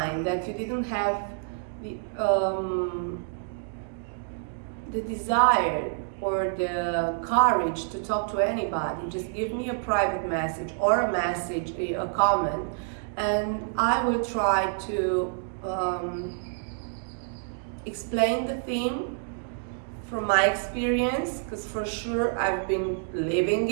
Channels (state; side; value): silent; left; digital silence